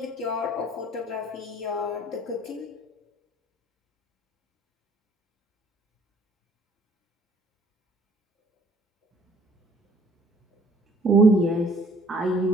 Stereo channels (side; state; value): both; normal; correlation 0.58